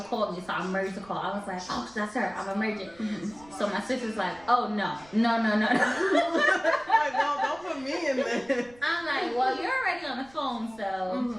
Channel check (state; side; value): noise; right; rumble, 25 dB below the sound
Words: called me, so I merged the call. I was like, oh, that's her. I'm emerging. So my sister's like, oh no. Like, no, don't put me in there. I'm like, well, you're already on the phone, so.